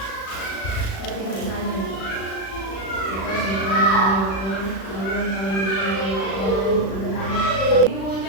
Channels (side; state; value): right; late; 36 ms